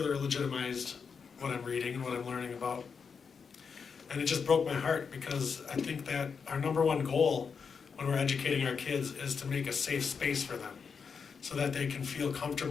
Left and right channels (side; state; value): right; quieter; 5.9 dB